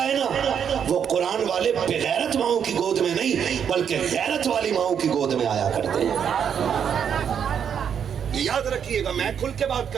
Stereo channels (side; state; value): left; quieter; 8.0 dB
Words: ہے نا, وہ قرآن والے بغیرت ماؤں کی گود میں نہیں بلکہ غیرت والی ماؤں کی گود میں آیا کرتے ہیں. یاد رکھیے گا, میں کھل کے بات